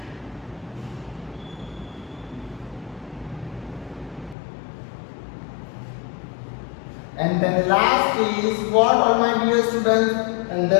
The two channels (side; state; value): right; drops out; at 4.4 s